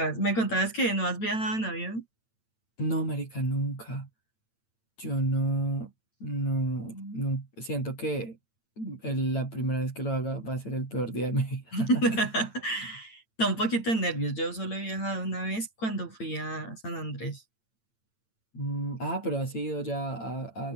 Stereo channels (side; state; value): right; late; 8.9 ms